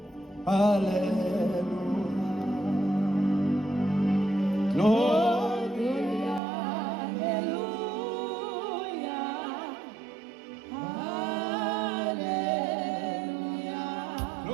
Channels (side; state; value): left; drops out; at 6.4 s